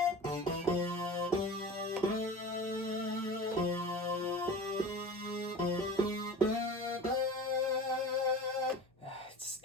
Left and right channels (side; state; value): both; normal; correlation 0.35